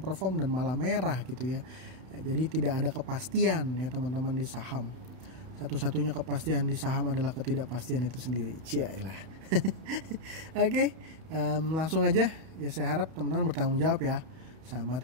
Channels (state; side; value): late; left; 32 ms